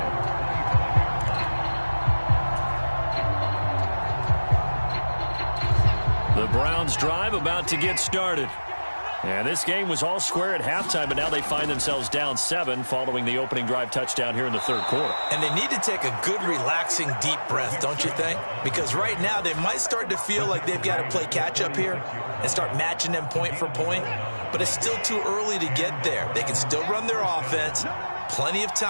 The Browns drive about to get started. And this game was all square at halftime, but now they find themselves down 7 following the opening drive touchdown here in the third quarter. And they need to take a good, relaxing, deep breath, don't you think? Because right now they might start to feel like they've got to play catch-up here and start matching them point for point. But it's still too early to get there. They can still run their offense. Plenty of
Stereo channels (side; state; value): both; inverted; correlation -1.00